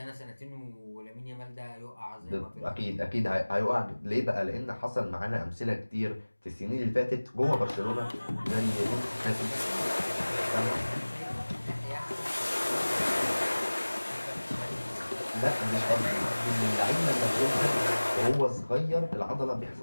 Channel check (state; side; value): inverted; both; correlation -1.00